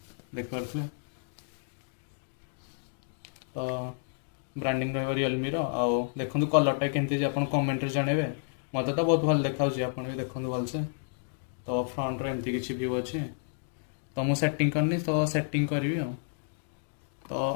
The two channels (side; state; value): right; silent; digital silence